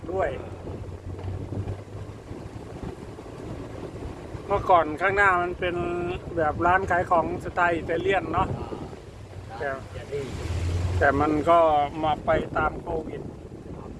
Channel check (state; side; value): identical; both; correlation 1.00